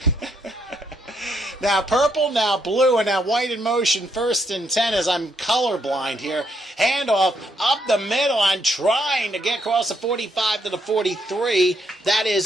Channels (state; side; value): normal; both; correlation 0.76